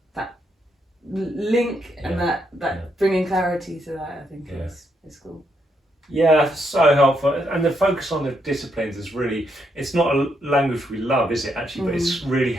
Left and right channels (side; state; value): both; normal; correlation 0.78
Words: link and that bringing clarity to that, I think is cool. Yeah, so helpful. And the focus on the disciplines is really, it's not a language we love, is it actually? But it's really